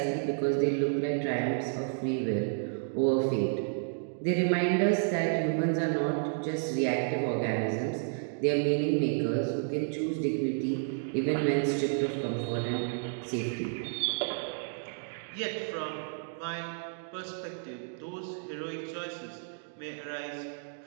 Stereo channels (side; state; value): left; silent; digital silence